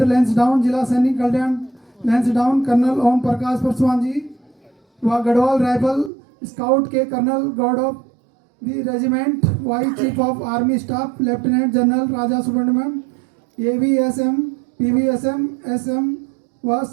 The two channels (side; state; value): left; drops out; at 6.1 s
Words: लैंसडाउन, जिला सैनिक कल्याण लैंसडाउन, कर्नल ओम प्रकाश पासवान जी व गढ़वाल राइफल स्काउट के colonel god of the regiment, vice chief of army staff lieutenant general Raja Subramaniam, AVSM, PVSM, SM व